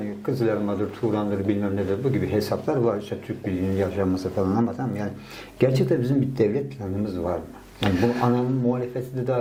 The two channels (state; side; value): identical; both; correlation 1.00